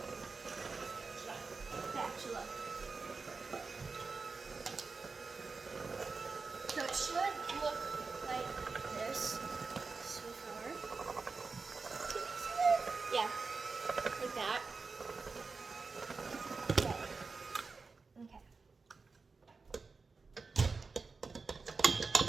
Spatula. So it should look like this so far. Yeah, like that. Okay.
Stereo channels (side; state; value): left; quieter; 4.4 dB